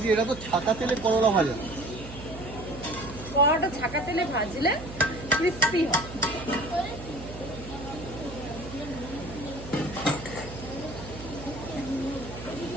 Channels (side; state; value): right; noise; hum, 13 dB below the sound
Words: এটা তো ছাকা তেলে করলা ভাজা। করলাটা ছাকা তেলে ভাজলে ক্রিস্পি হয়।